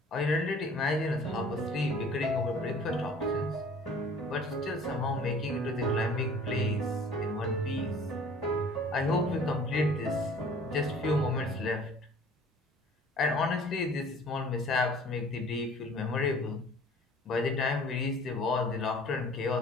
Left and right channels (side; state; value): both; normal; correlation 0.50